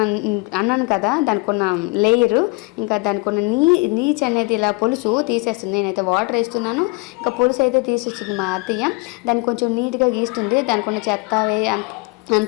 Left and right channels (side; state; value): right; quieter; 26.8 dB